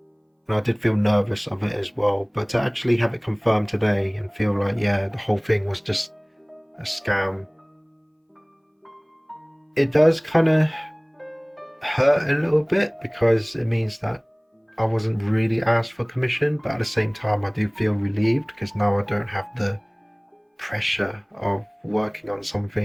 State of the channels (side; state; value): both; identical; correlation 1.00